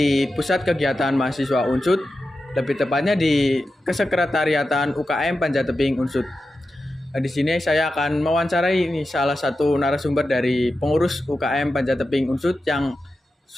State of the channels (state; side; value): normal; both; correlation 0.91